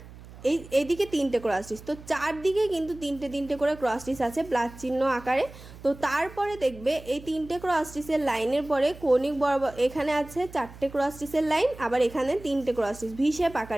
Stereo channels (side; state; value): right; noise; hum, 18 dB below the sound